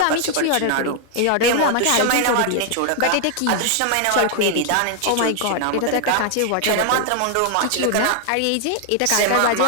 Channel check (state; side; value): different; both; correlation 0.00